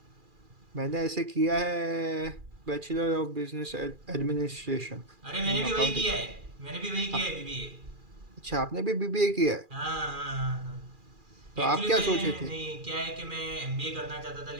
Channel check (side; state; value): left; late; 2.4 ms